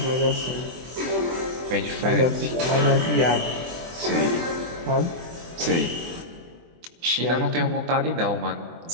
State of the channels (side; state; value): left; late; 24 ms